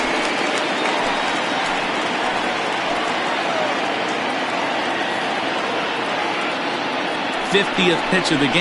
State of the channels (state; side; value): identical; both; correlation 1.00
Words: '50th pitch of the